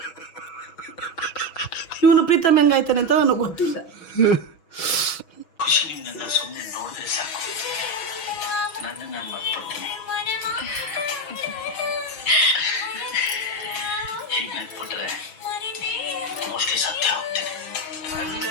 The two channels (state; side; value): late; right; 6.1 ms